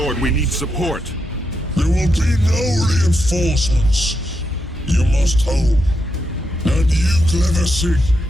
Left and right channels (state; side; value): normal; both; correlation 0.84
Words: we need support. There will be no reinforcements. You must hold. And you, Glephisic,